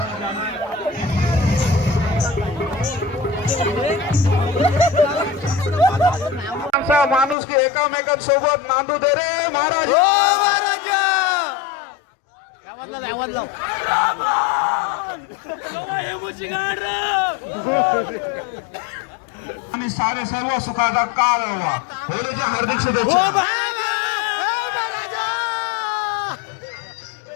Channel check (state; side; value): drops out; right; at 7.4 s